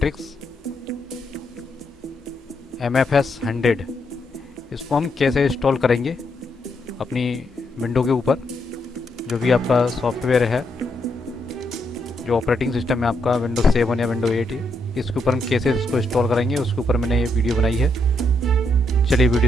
MFS 100। इसको हम कैसे इंस्टॉल करेंगे अपनी विंडो के ऊपर। जो भी आपका सॉफ्टवेयर है, जो ऑपरेटिंग सिस्टम है आपका विंडोज 7 या विंडो 8 है, इसके ऊपर हम कैसे इसको इंस्टॉल करेंगे, उसके ऊपर मैंने ये वीडियो बनाई है। चलिए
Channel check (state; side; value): normal; both; correlation 0.78